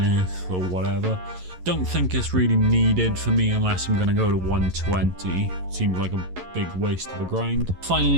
Earth or whatever. Don't think it's really needed for me unless I'm going to go to 120. Seems like a big waste of a grind.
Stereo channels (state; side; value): late; left; 11 ms